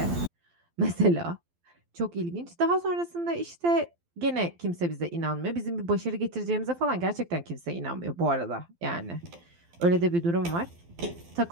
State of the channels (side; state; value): left; late; 12 ms